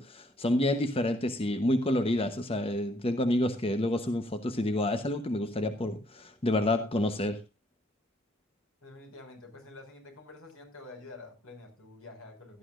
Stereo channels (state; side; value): normal; both; correlation 0.67